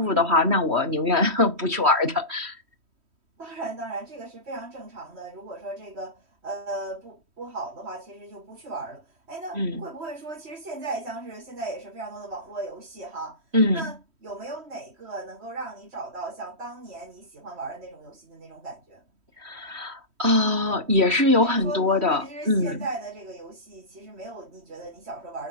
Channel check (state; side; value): late; left; 3.1 ms